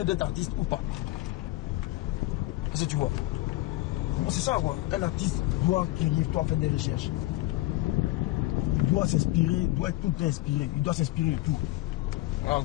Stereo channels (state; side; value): quieter; right; 18.0 dB